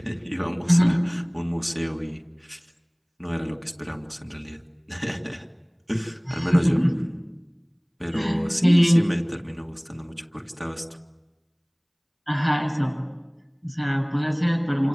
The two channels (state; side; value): identical; both; correlation 1.00